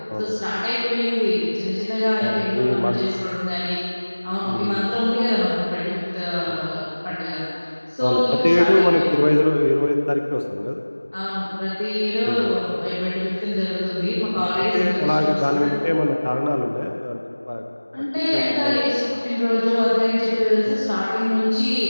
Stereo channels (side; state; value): both; inverted; correlation -1.00